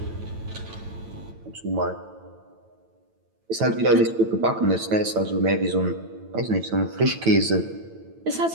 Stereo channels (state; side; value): late; left; 9.0 ms